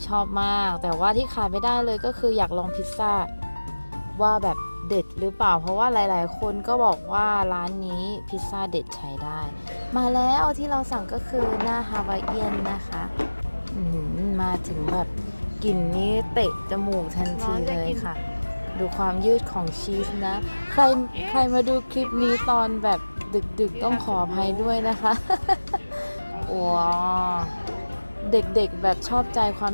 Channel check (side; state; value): both; inverted; correlation -1.00